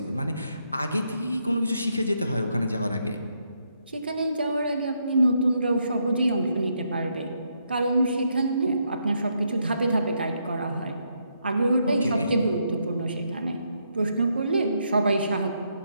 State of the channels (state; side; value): inverted; both; correlation -0.77